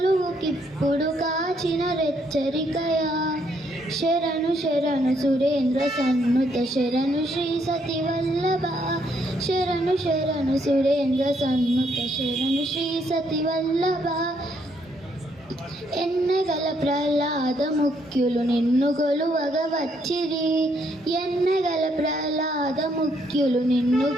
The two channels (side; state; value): both; normal; correlation 0.72